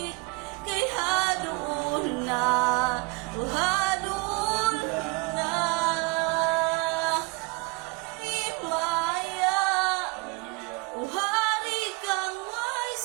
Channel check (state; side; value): quieter; left; 26.9 dB